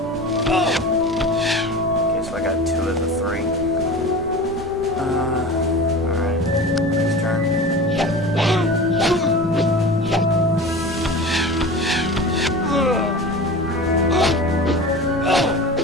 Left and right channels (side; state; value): right; noise; rumble, 14 dB below the sound